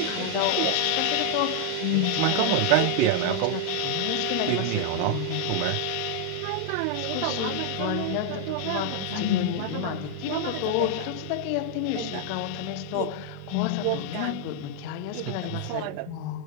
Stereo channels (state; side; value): different; both; correlation 0.00